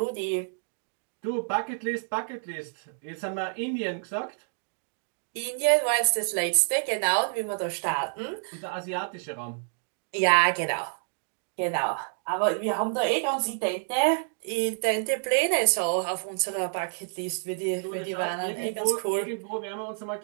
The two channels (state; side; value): silent; left; digital silence